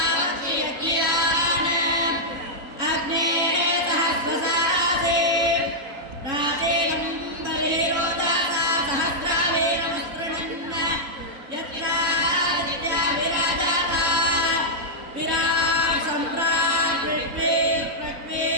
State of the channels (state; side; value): late; left; 3.7 ms